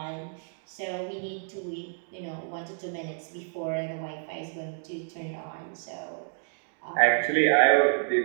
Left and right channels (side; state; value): left; silent; digital silence